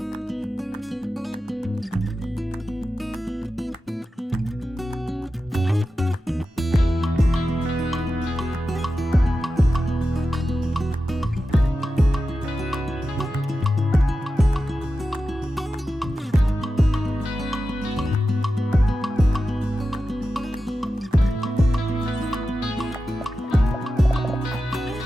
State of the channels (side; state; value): both; normal; correlation 0.92